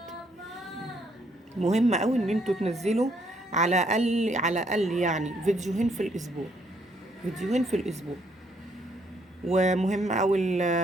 مهم قوي ان انتوا تنزلوا على الاقل يعني فيديوهين في الاسبوع، فيديوهين في الاسبوع. ومهم اوي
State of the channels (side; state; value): both; normal; correlation 0.70